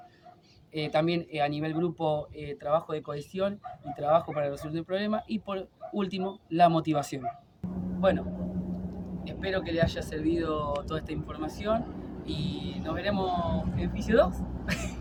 también a nivel grupo, trabajo de cohesión y trabajo para resolver problemas, y por último, la motivación. Bueno, Espero que le haya servido toda esta información y nos veremos en Fisio 2.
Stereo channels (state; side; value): identical; both; correlation 1.00